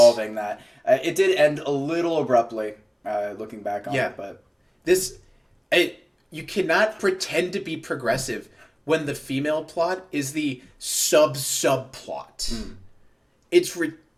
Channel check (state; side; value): identical; both; correlation 1.00